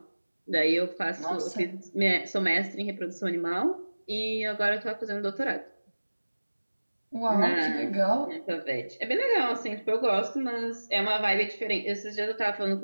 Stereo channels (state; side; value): inverted; both; correlation -1.00